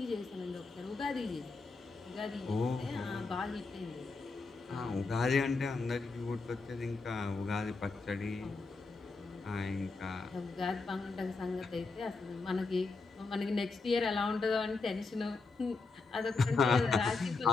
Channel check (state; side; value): quieter; right; 4.0 dB